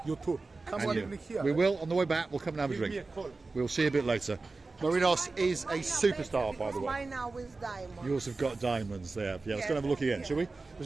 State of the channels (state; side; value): quieter; left; 3.7 dB